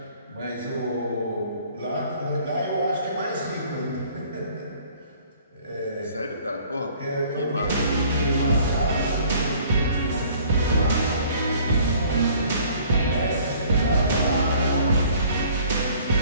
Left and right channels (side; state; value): both; inverted; correlation -0.55